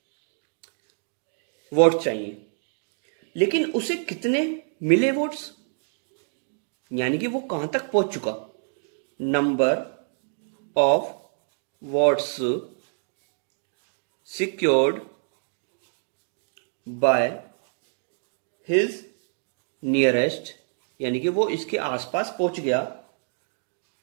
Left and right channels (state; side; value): silent; left; 60 dB below the other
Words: वोट चाहिए, लेकिन उसे कितने मिले वोट्स, यानी कि वो कहां तक पहुंच चुका। Number of votes secured by his nearest, यानी कि वो इसके आसपास पहुंच गया,